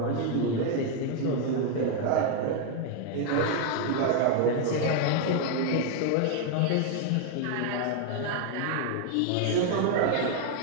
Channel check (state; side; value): different; both; correlation 0.00